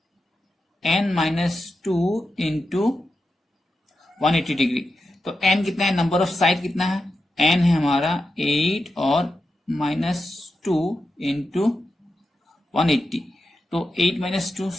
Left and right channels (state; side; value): normal; both; correlation 0.89